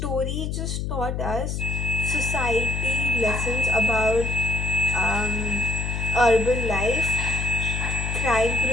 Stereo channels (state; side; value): noise; left; hum, 3 dB below the sound